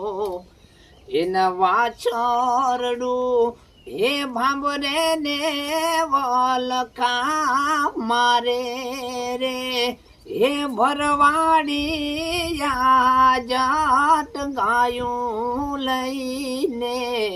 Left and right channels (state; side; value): identical; both; correlation 1.00